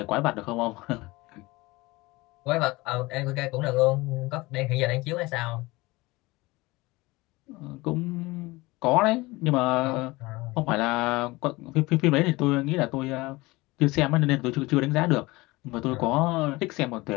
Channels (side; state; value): right; quieter; 21.8 dB